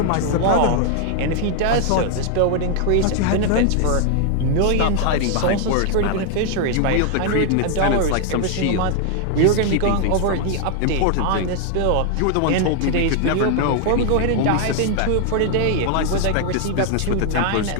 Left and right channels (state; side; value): different; both; correlation 0.00